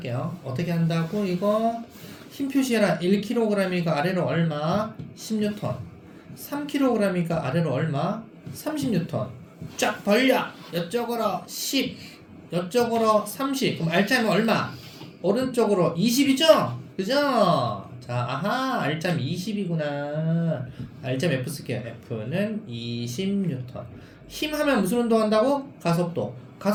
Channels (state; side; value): identical; both; correlation 1.00